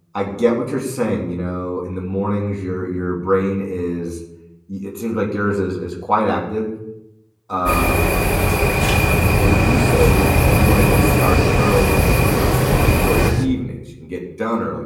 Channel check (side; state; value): both; identical; correlation 1.00